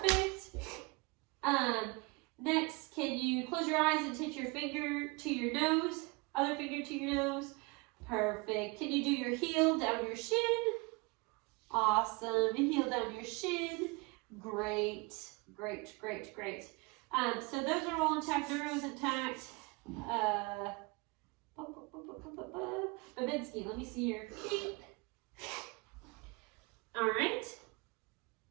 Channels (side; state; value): left; quieter; 27.3 dB